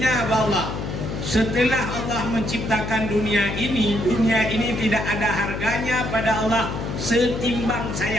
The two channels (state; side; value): noise; left; hum, 5 dB below the sound